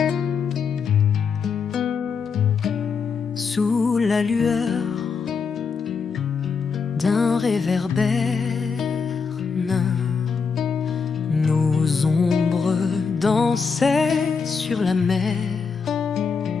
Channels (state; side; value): quieter; right; 5.6 dB